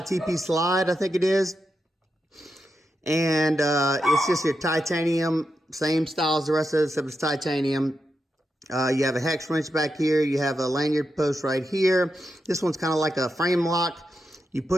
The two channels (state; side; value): normal; both; correlation 0.87